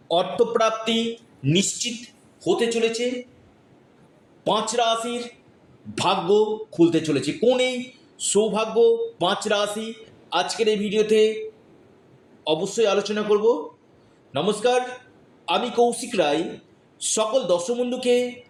অর্থপ্রাপ্তি নিশ্চিত হতে চলেছে। 5 রাশির ভাগ্য খুলতে চলেছে। কোন এই সৌভাগ্য 5 রাশি আজকের এই ভিডিওতে অবশ্যই আলোচনা করব। নমস্কার, আমি কৌশিক রায়। সকল দর্শক বন্ধুকে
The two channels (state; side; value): identical; both; correlation 1.00